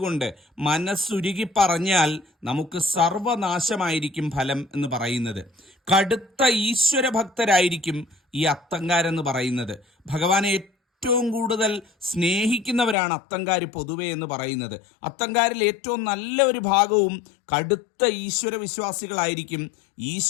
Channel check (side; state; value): right; drops out; at 13.0 s